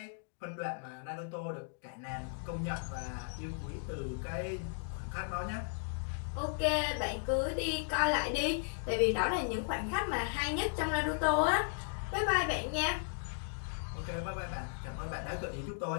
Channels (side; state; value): right; silent; digital silence